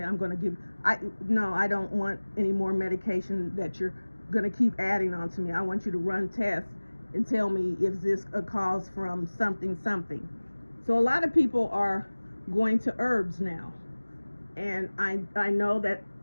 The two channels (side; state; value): both; inverted; correlation -1.00